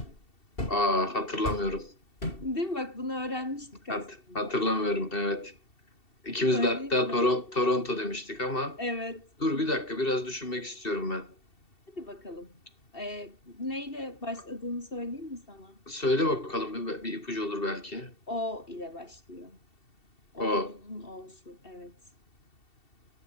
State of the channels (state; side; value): late; right; 2.7 ms